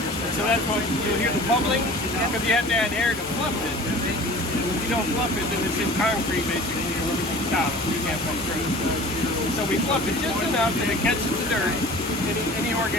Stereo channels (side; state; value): both; normal; correlation 0.43